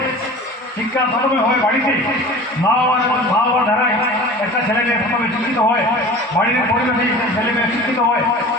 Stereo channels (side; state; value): both; normal; correlation 0.39